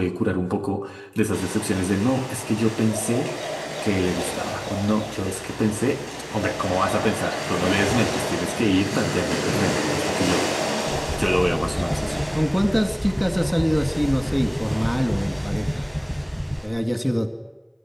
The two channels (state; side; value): identical; both; correlation 1.00